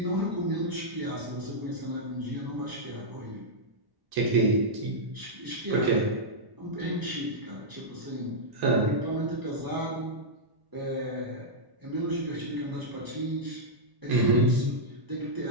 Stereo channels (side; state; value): left; late; 1.1 ms